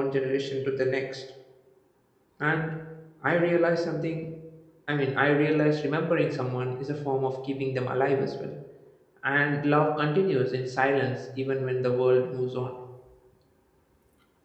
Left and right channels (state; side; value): identical; both; correlation 1.00